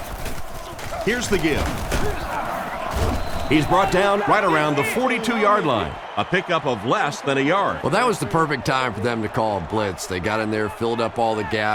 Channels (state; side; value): identical; both; correlation 1.00